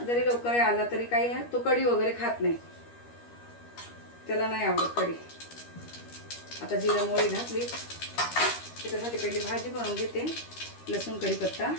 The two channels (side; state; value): right; late; 13 ms